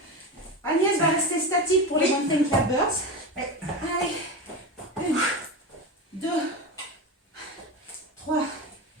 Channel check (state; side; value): normal; both; correlation 0.22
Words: Agnès va rester statique pour les mountain climbers. Allez, 1, 2, 3,